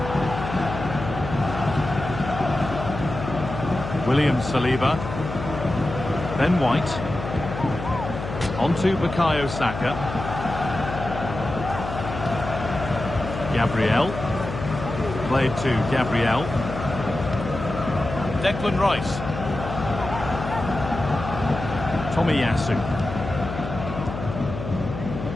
William Saliba. Ben White. Onto Bukayo Saka. Gabriel. Played to Gabriel. Declan Rice. Tomiyasu.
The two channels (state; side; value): noise; left; hum, 7 dB below the sound